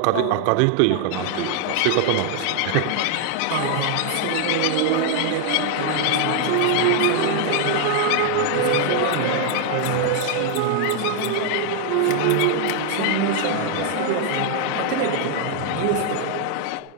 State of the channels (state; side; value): different; both; correlation 0.00